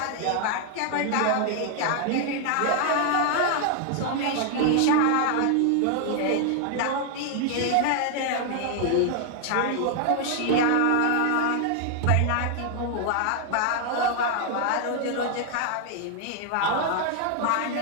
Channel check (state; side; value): different; both; correlation 0.00